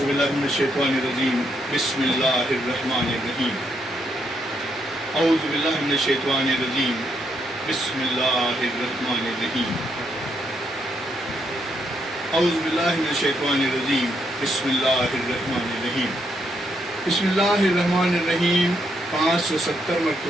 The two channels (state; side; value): normal; both; correlation 0.77